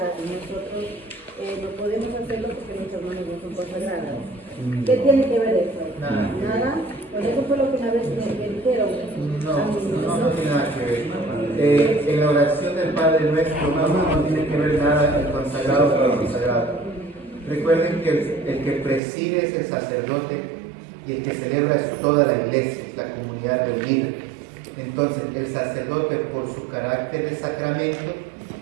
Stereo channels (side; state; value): left; drops out; at 19.0 s